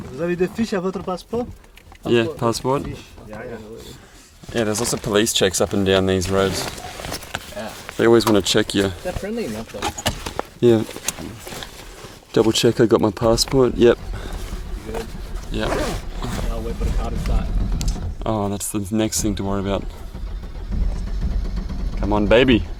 Vous avez des fiches à votre passeport? Yeah, passport. Yeah. Yeah, there's lots of police checks up and down these roads. Yeah. They always want to check you. They're friendly enough though. Yeah. Double check I got my passport. Yep. You good? Yep. I'll wait for the car to start. Oh, that's the next thing to worry about. Come on, baby.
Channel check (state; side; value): identical; both; correlation 1.00